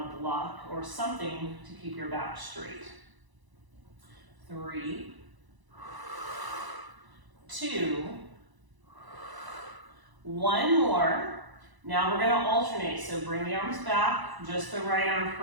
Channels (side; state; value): left; late; 1.0 ms